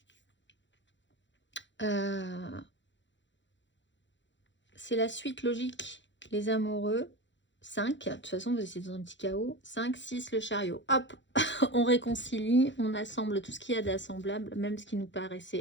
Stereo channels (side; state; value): right; late; 0.54 ms